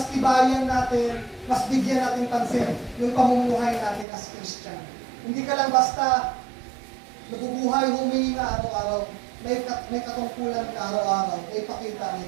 tibayan natin, mas bigyan natin pansin yung pamumuhay natin as Christian. Hindi ka lang basta nabubuhay, humingi na araw-araw. May katungkulan ka araw-araw. May pakita, may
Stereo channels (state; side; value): drops out; left; at 4.0 s